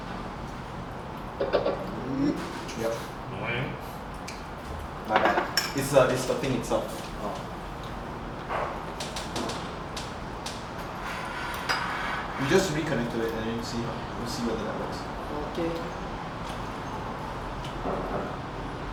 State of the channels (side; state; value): both; identical; correlation 1.00